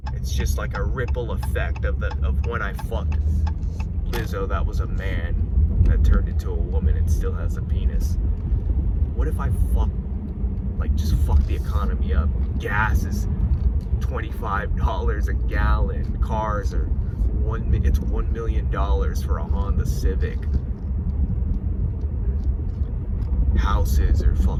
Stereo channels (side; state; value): both; identical; correlation 1.00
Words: It's just like a ripple effect of when I fucked Lizzo, that was a man that turned into a woman and still has a penis. What if I just fuck the economy up? Gas is $25 a gallon. Cars are it's $1 million for a Honda Civic. Houses are